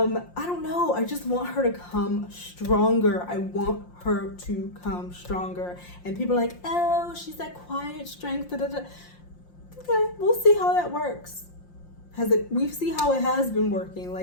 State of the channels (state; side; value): late; right; 5.7 ms